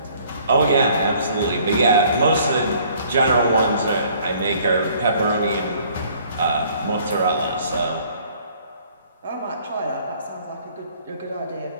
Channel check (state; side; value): inverted; both; correlation -0.58